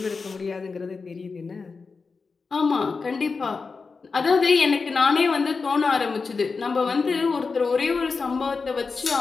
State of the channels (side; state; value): right; quieter; 4.6 dB